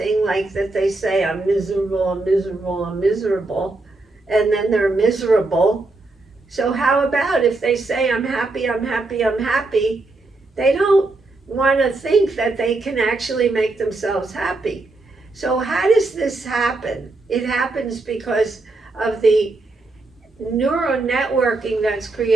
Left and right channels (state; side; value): quieter; left; 3.2 dB